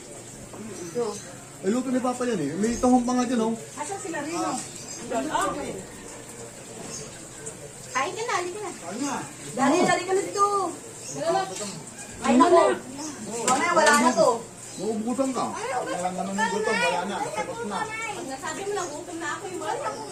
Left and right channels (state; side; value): identical; both; correlation 1.00